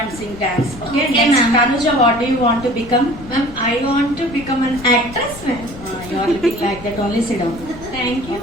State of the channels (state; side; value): noise; left; rumble, 16 dB below the sound